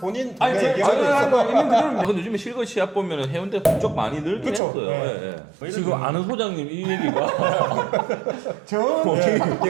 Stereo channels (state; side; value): drops out; left; at 4.6 s